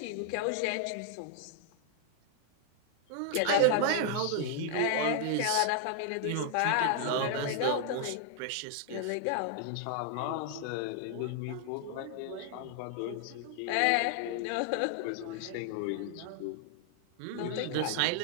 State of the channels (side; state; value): both; different; correlation 0.00